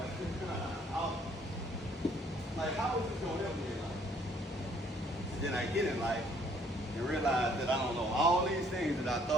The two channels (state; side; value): normal; both; correlation 0.63